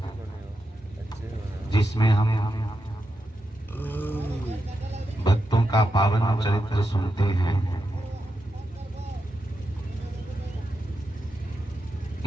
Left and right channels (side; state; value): both; normal; correlation 0.87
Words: जिसमें हम भक्तों का पावन चरित्र सुनते हैं,